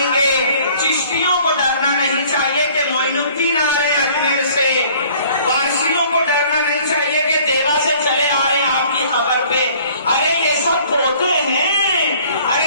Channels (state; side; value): inverted; both; correlation -0.54